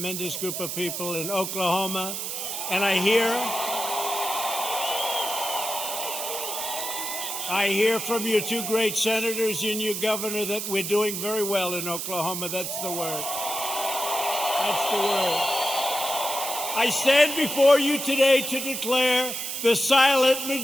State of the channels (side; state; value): right; noise; hiss, 4 dB below the sound